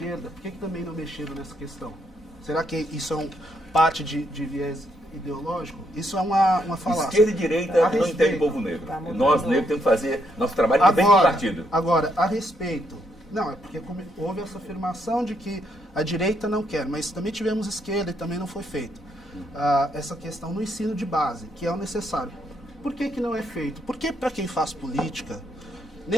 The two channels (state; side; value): normal; both; correlation 0.75